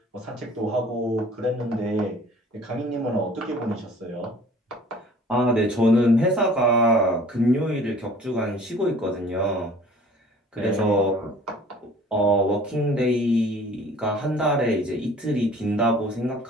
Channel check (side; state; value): both; normal; correlation 0.50